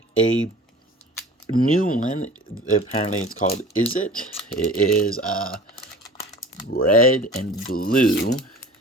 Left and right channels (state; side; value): normal; both; correlation 0.41